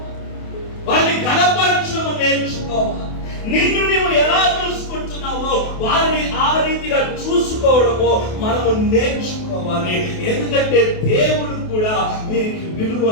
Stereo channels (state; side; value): late; right; 28 ms